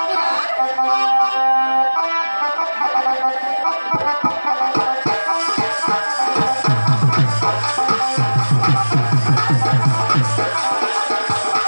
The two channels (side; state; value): both; inverted; correlation -1.00